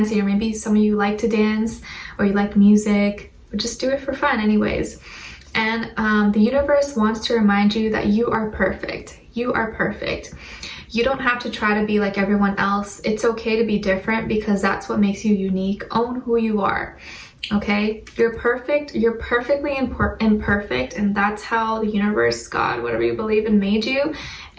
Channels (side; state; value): both; identical; correlation 1.00